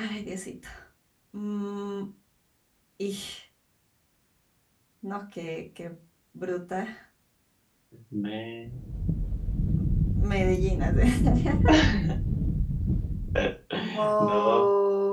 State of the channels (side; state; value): both; identical; correlation 1.00